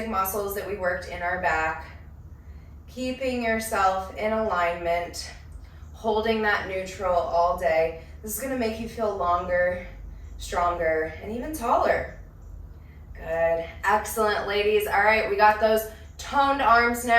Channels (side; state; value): both; identical; correlation 1.00